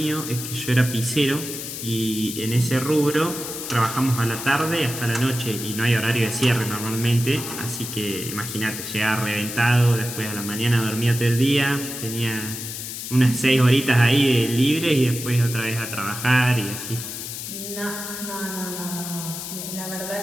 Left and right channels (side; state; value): left; noise; hiss, 7 dB below the sound